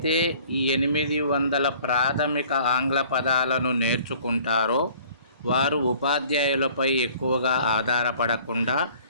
ఈ 800 ప్రాథమిక ఆంగ్ల పదాలను నేర్చుకుంటారో వారు ఉపాధ్యాయులపై ఎక్కువగా ఆధారపడకుండా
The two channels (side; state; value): both; inverted; correlation -0.52